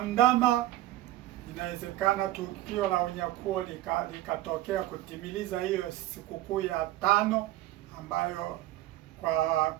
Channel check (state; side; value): quieter; left; 15.1 dB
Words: inawezekana tukio la unyakuo likatokea kutimiliza hiyo sikukuu ya 5, ambayo